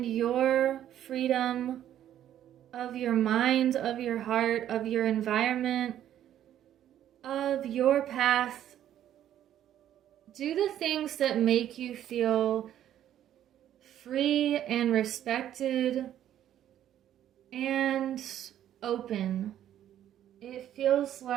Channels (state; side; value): quieter; left; 11.3 dB